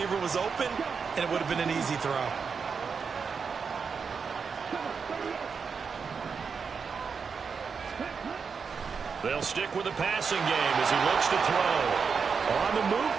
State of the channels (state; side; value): quieter; left; 5.7 dB